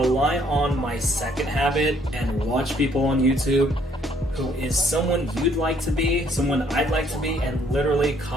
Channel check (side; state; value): both; normal; correlation 0.65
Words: on my second habit and watch people on YouTube who is someone you'd like to be, someone I'd like to be, and literally